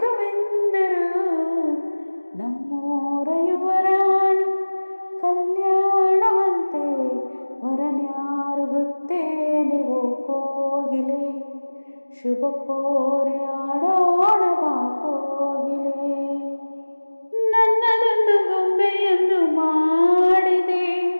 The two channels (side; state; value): both; inverted; correlation -1.00